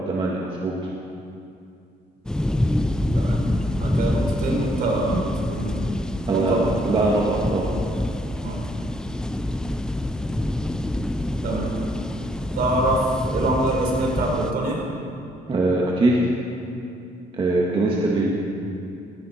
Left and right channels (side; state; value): both; normal; correlation 0.70